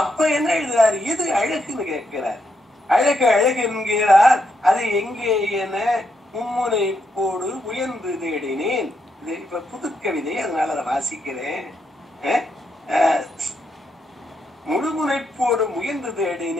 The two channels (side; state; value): both; normal; correlation 0.80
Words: என்ன எழுதுறாரு, எது அழகுன்னு கேட்கிறார். அழகு அழகு என்கிறார், அது எங்கே என மும்முனை போடு உயர்ந்து தேடினேன். இது இப்ப புது கவிதை, அதனால அதை வாசிக்கிறேன். முழுமுனைப்போடு முயன்று